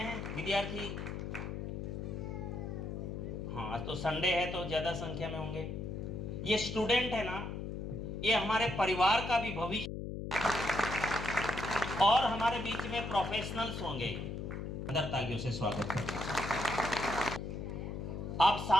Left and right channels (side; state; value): left; noise; hum, 5 dB below the sound